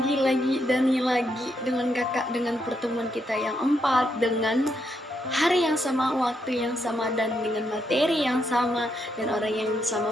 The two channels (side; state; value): both; normal; correlation 0.79